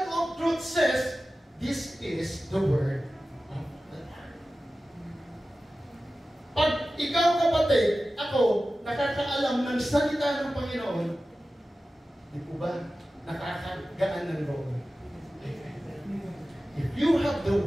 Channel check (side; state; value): both; normal; correlation 0.95